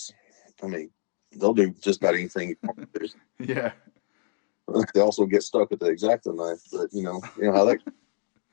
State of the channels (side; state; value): right; silent; 61 dB below the other